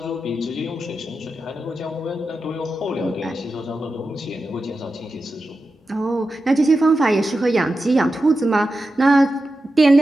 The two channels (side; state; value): both; normal; correlation 0.91